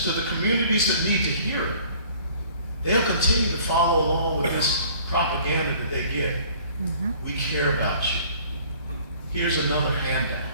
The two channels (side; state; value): both; inverted; correlation -0.53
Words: to the communities that need to hear it, they'll continue to follow along with this propaganda that they get. We care about you. Here's another handout.